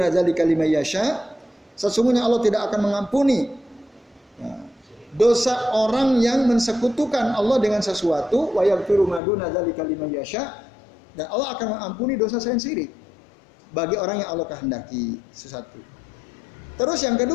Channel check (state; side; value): drops out; right; at 9.2 s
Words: dzalika liman yasha. Sesungguhnya Allah tidak akan mengampuni ya, dosa orang yang mensekutukan Allah dengan sesuatu, wa yaghfiru ma duna dzalika liman yasha, dan Allah akan mengampuni dosa selain syirik bagi orang yang Allah kehendaki. Sesuatu. Terus yang